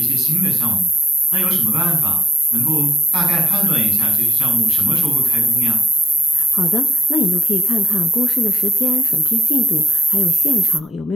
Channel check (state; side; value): normal; both; correlation 0.79